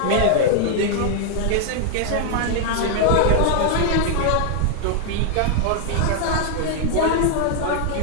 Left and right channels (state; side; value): different; both; correlation 0.00